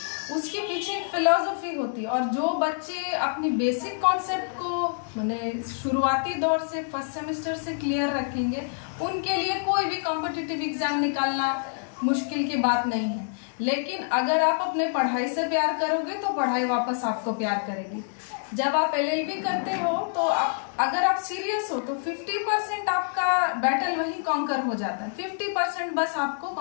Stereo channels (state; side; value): silent; right; 60 dB below the other